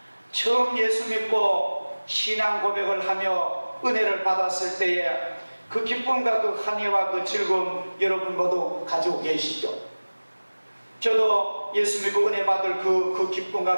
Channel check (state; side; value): inverted; both; correlation -1.00